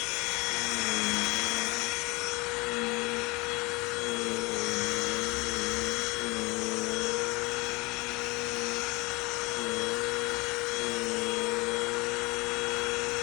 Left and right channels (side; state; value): right; quieter; 24.7 dB